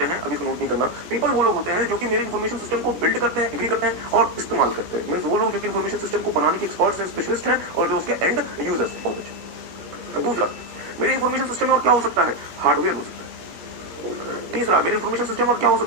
हैं, अभी इसको नोट नहीं करना, पीपल वो लोग होते हैं जो कि मेरे इंफॉर्मेशन सिस्टम को बिल्ड करते हैं, एग्री करते हैं और इस्तेमाल करते हैं। मींस वो लोग जो कि इंफॉर्मेशन सिस्टम को बनाने के एक्सपर्ट्स हैं, स्पेशलिस्ट हैं और जो उसके एंड यूजर्स हैं। बहुत अच्छा। दूसरा, मेरे इंफॉर्मेशन सिस्टम में और क्या हो सकता है, हार्डवेयर हो सकता है। तीसरा, मेरे इंफॉर्मेशन सिस्टम और क्या हो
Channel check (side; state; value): left; late; 17 ms